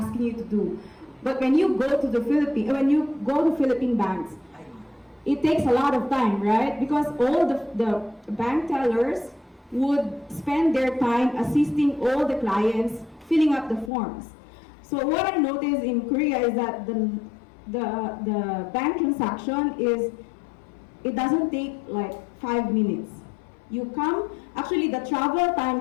you to do. But when you go to Philippine banks, it takes a lot of time, right? Because all the bank tellers would spend their time assisting all the clients filling up the forms. So what I noticed in Korea is that the bank transaction it doesn't take like 5 minutes. You come, actually the travel time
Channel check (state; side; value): drops out; right; at 13.9 s